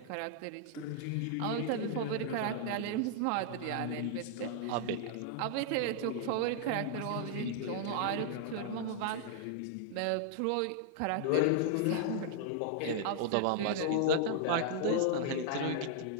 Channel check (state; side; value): different; both; correlation -0.01